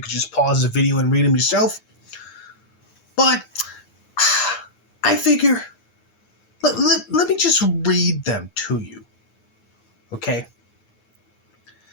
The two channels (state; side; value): late; right; 9.7 ms